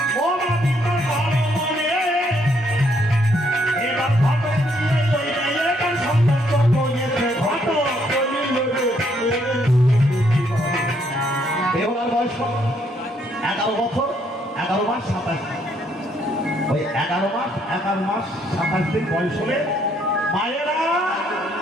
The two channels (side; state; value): both; normal; correlation 0.70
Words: ও মাদির ঘর মনে এবার ঘটে দিয়ে ওই মেয়েটার সম্পর্ক করেছে ঘট দেহলার বয়স 11 বছর 11 মাস 27 ওই 11 মাস 27 দিন বয়স হলে মায়েরা